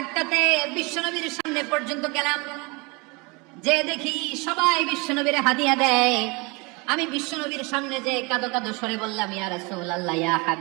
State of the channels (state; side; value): quieter; left; 27.8 dB